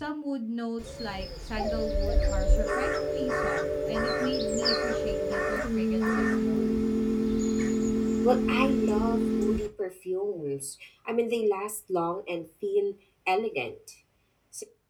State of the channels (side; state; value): both; identical; correlation 1.00